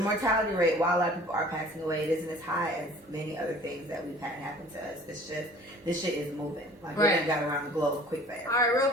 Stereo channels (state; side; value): normal; both; correlation 0.48